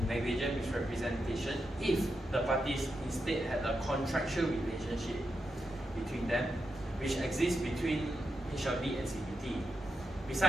negligent misrepresentation if the parties instead had a contractual relationship between them, which exists between HLB and CBT.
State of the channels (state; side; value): normal; both; correlation 0.86